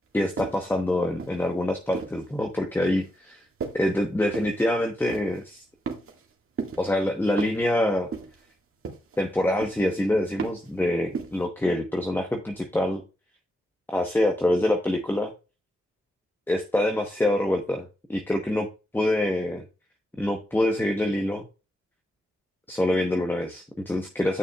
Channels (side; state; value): both; normal; correlation 0.84